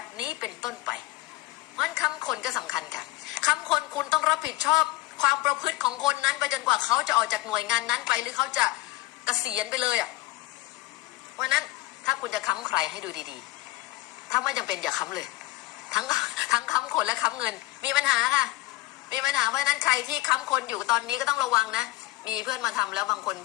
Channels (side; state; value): right; quieter; 18.7 dB